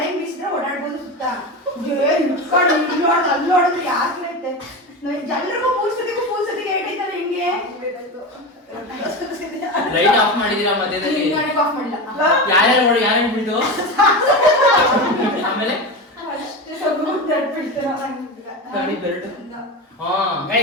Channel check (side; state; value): both; normal; correlation 0.22